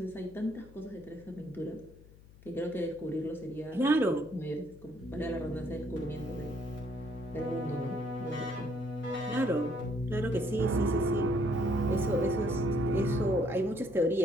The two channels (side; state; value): left; noise; hum, 22 dB below the sound